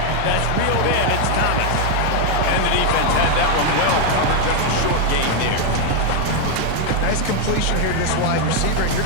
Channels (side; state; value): both; different; correlation 0.01